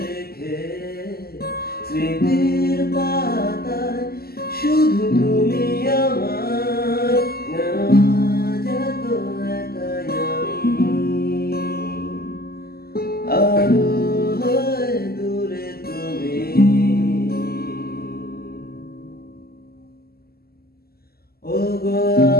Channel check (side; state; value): right; late; 0.45 ms